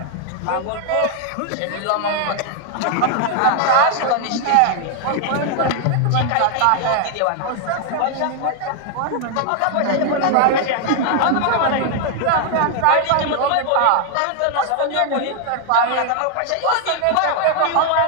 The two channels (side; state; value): both; different; correlation 0.00